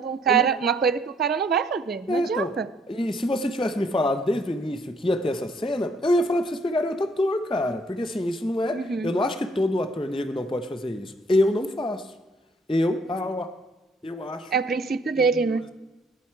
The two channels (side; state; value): both; normal; correlation 0.65